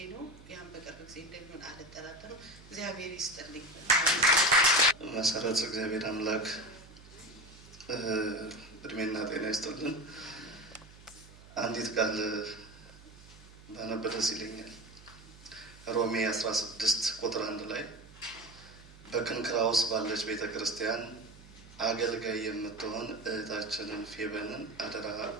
ነው። ያን በቅርብ ጊዜ እንደሚሆን አልጠራጠርም። እግዚአብሔር ይስጥልኝ። መሰረት እግዚአብሔር አምላክ እድሜና ጤና ይስጥልን። አንዲት ቃል ባነብ ደስ ይለኛል። ሮሜ 16 ቁጥር 1 ላይ በክንክራውስ ባለች ቤተክርስቲያን አገልጋይ የምትሆን እህታችንን ፌበንን አደራ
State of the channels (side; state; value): right; noise; hum, 21 dB below the sound